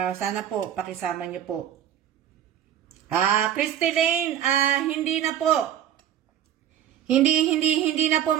pakisama niyo po. Christy Lane, hindi na po. Hindi na po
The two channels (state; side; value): quieter; left; 10.6 dB